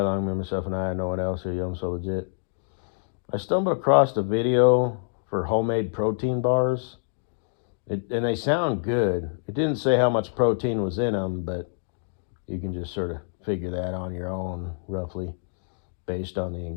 with myself and I, no one else here. I'm so legit. I stumbled across a video for homemade protein bars, and they sound good. It didn't say how much protein was in them, but you can just sort of figure that on your own, roughly, based on the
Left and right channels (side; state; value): right; silent; digital silence